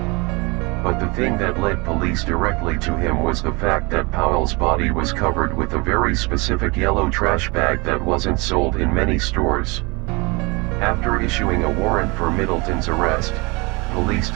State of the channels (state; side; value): quieter; left; 27.1 dB